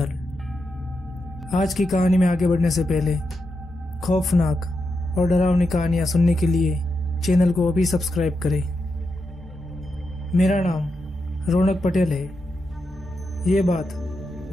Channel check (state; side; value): normal; both; correlation 0.86